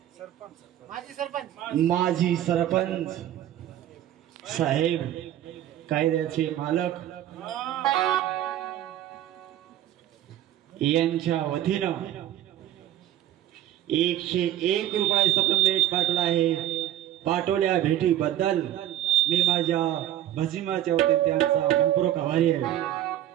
माजी सरपंच साहेब कायद्याचे मालक यांच्या वतीनं 101 रुपये सप्लिमेंट पाठवला आहे। पाठवल्या भेटीबद्दल मी माझ्या भजिमाच्या वतीने त्यांचा मनपूर्वक आभारी आहे।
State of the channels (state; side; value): quieter; left; 12.5 dB